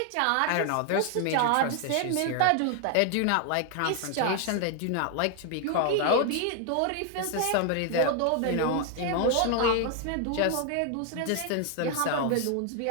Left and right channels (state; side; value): different; both; correlation 0.00